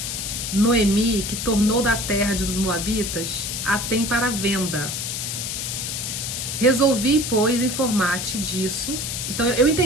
Noemi, que tornou da terra dos Moabitas, a tem para venda. Resolvi, pois, informar-te disso. Então eu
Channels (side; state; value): left; noise; hiss, 4 dB below the sound